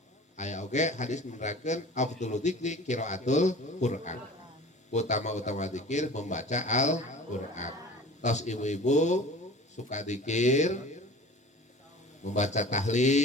ayat oge hadis menerangkan afdhalu dzikri qiraatul Quran utama dzikir membaca Al-Quran. Tos ibu-ibu suka dzikir membaca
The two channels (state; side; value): normal; both; correlation 0.41